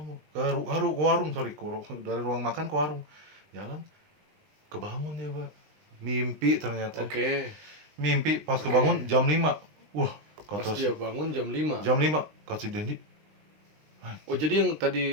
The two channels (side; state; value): left; late; 19 ms